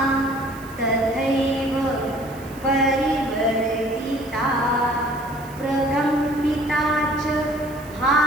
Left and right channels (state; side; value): noise; right; hiss, 22 dB below the sound